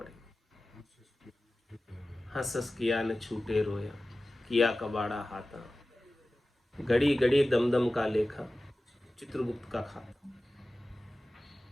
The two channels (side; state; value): both; normal; correlation 0.96